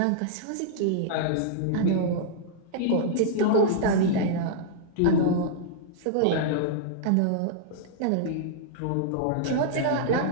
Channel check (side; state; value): both; different; correlation -0.01